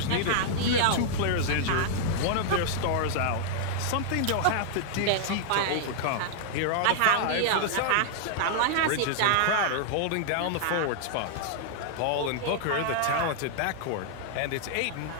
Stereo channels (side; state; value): both; different; correlation -0.01